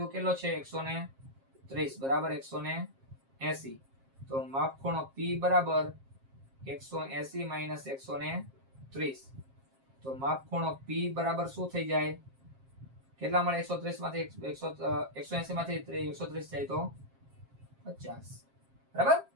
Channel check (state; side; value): late; left; 7.5 ms